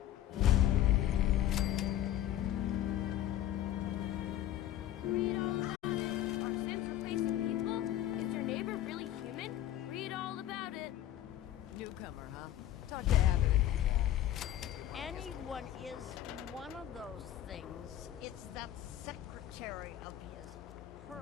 Anyone is one of those things. It's that secretary of his,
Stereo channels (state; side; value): quieter; right; 12.5 dB